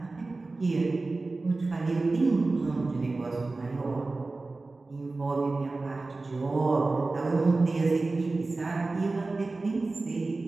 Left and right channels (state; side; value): quieter; left; 3.4 dB